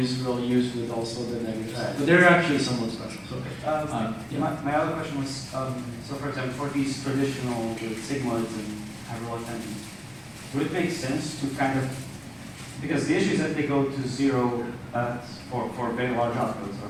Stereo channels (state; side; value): identical; both; correlation 1.00